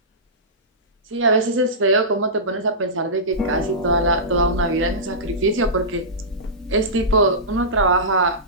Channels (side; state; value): both; normal; correlation -0.17